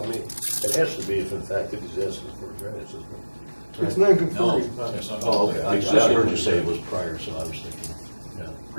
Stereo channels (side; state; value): both; inverted; correlation -1.00